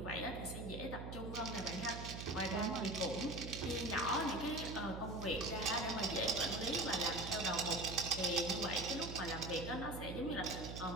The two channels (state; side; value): noise; right; hum, 7 dB below the sound